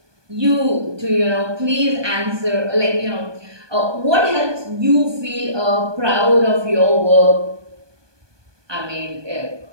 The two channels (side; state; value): left; late; 1.2 ms